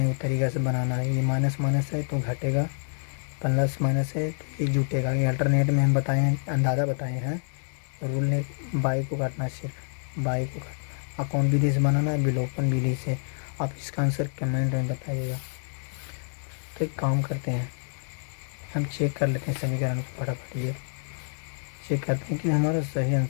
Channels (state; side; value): silent; right; 60 dB below the other